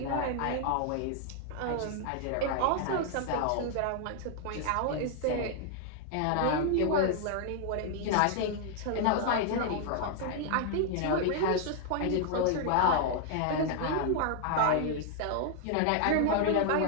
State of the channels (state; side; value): different; both; correlation 0.00